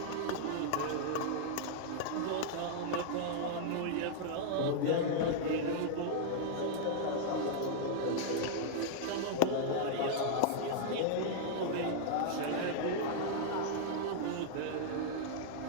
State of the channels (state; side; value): different; both; correlation -0.01